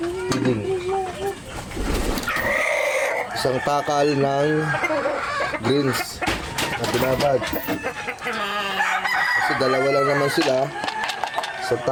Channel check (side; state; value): both; identical; correlation 1.00